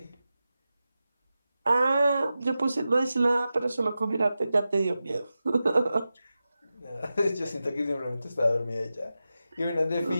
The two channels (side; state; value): both; inverted; correlation -0.93